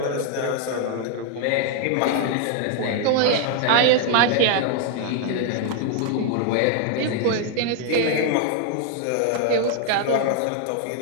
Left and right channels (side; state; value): both; different; correlation 0.00